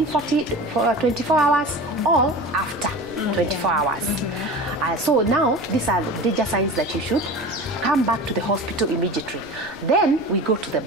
24 hours or after 24 hours. So now these are the danger signs that you should come back to the hospital immediately. Then we go to the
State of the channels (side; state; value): right; noise; rumble, 23 dB below the sound